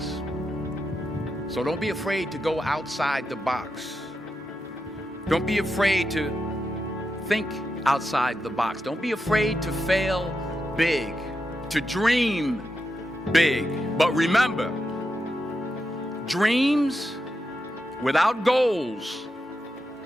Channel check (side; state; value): both; normal; correlation 0.87